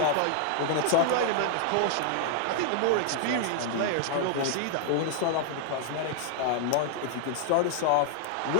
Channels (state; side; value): different; both; correlation 0.00